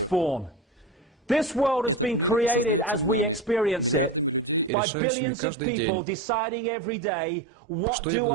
This world has been created as we experience it by billions of people deciding every day, what do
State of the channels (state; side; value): drops out; left; at 4.7 s